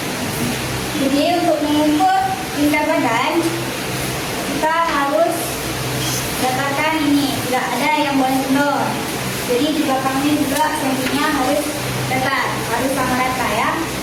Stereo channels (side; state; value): both; identical; correlation 1.00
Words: Jadi untuk mengukur tingkat badan kita harus dapatkan ini, tidak ada yang boleh kendor. Jadi di belakangnya juga sampingnya harus datar, harus sama rata ya.